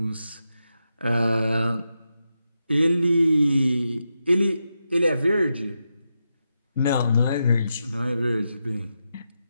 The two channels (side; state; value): both; inverted; correlation -0.87